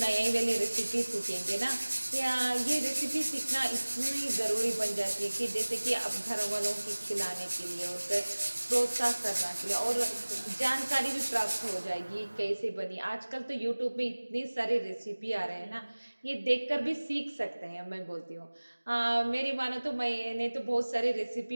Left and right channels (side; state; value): both; inverted; correlation -1.00